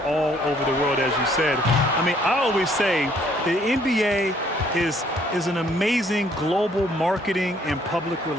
all over the world, as you said. I always say the NBA is an amazing global marketing and public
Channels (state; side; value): normal; both; correlation 0.63